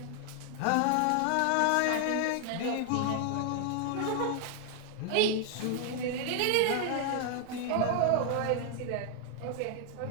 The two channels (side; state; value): both; different; correlation 0.00